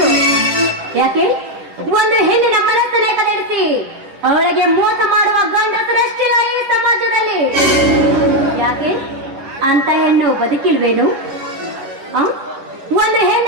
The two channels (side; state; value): left; late; 10 ms